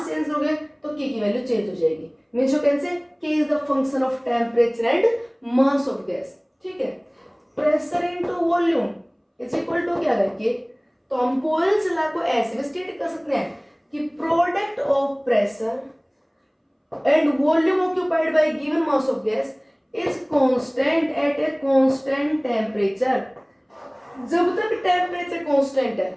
चेंज करोगे, तो K की वैल्यू चेंज हो जाएगी। मीन्स यू कैन से K is the function of temperature and mass of gas। ठीक है, pressure into volume is equal to क्या है, तो हम बॉयल्स लॉ को ऐसे भी स्टेट कर सकते हैं कि product of pressure and volume occupied by given mass of gas is constant eight a constant temperature. जब तक टेम्परेचर कांस्टेंट है,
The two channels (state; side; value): identical; both; correlation 1.00